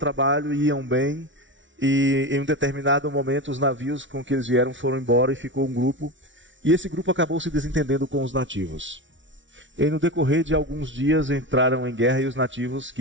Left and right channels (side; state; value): left; late; 0.55 ms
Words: iam bem, e em um determinado momento os navios com que eles vieram foram embora e ficou um grupo. E esse grupo acabou se desentendendo com os nativos. E no decorrer de alguns dias entraram em guerra e os nativos,